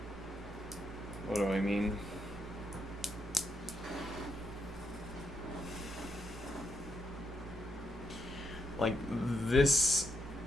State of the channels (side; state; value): both; normal; correlation 0.78